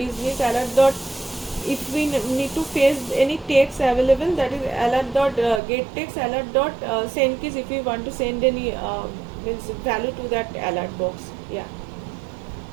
alert dot, if we need to face any text available, that is alert dot get text, alert dot send keys if we want to send any means value to that alert box. Yeah.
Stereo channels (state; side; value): drops out; left; at 5.6 s